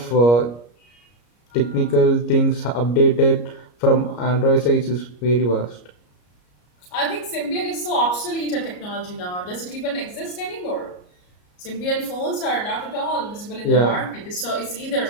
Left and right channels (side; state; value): right; late; 34 ms